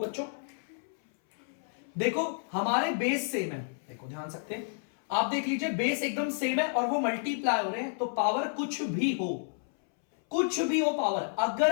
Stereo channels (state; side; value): silent; right; 57 dB below the other